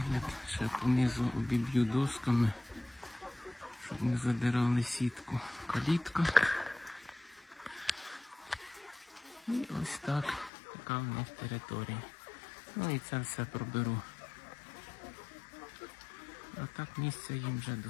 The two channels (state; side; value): drops out; right; at 10.5 s